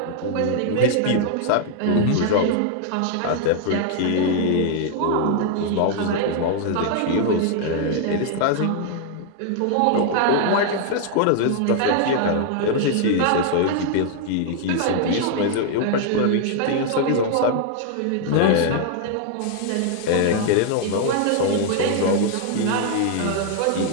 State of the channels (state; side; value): different; both; correlation 0.00